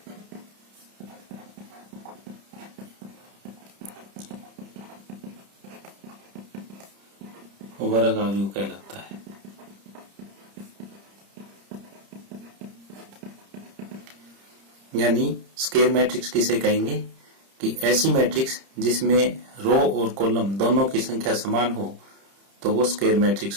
वर्ग आव्यूह कहलाता है। यानी स्क्वायर मैट्रिक्स किसे कहेंगे कि ऐसी मैट्रिक्स जिसमें रो और कॉलम दोनों की संख्या समान हो तो वो स्क्वायर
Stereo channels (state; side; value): late; left; 30 ms